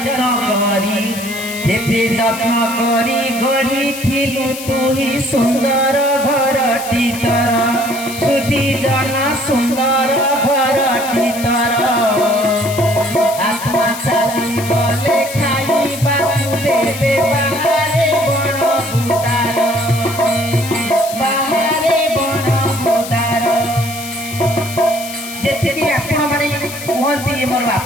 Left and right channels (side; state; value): left; noise; hiss, 11 dB below the sound